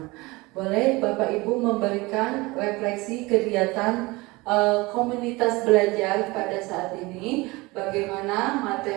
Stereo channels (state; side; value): quieter; left; 22.8 dB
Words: Boleh Bapak Ibu memberikan refleksi kegiatan komunitas belajar pada saat ini, bagaimana